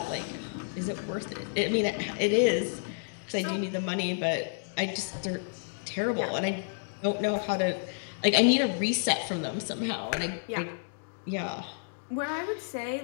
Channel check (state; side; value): silent; right; digital silence